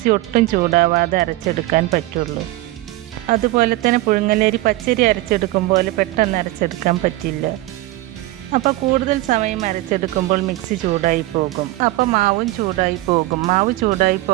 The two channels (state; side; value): quieter; left; 17.8 dB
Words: ഒട്ടും ചൂടാവാതെ അരച്ചെടുക്കാൻ പറ്റുള്ളൂ. അതുപോലെ തന്നെ പുഴുങ്ങലരി പച്ചരി അരച്ചെടുക്കുമ്പോൾ പെട്ടെന്ന് അരച്ചെടുക്കാൻ പറ്റില്ല. അപ്പോൾ കൂടുതൽ സമയം അരച്ചെടുക്കുമ്പോൾ മിക്സി ചൂടായി പോകും. അപ്പോൾ മാവും ചൂടായി പോകും. മാവ് ചൂടായി